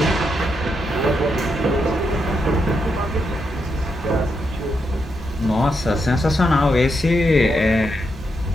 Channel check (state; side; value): normal; both; correlation 0.82